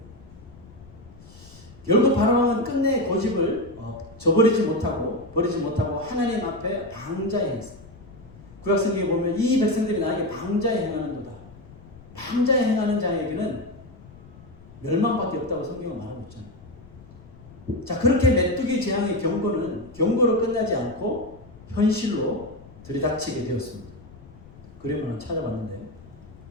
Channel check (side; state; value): left; noise; rumble, 20 dB below the sound